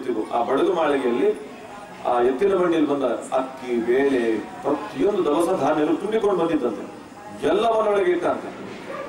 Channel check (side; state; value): both; identical; correlation 1.00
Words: ಆ ಬಡಗು ಮಾಳಿಗೆಯಲ್ಲಿ ಆ ಎತ್ತಿನ ಬಂಡಿಯಲ್ಲಿ ಬಂದ ಅಕ್ಕಿ, ಬೇಳೆ, ಪ್ರತಿಯೊಂದು ದವಸ ಧಾನ್ಯಗಳು ತುಂಬಿಕೊಂಡು ಬಂದಿದ್ದಂತೆ. ಎಲ್ಲವನ್ನೊಳಗೆ ಇಟ್ಟಂತೆ.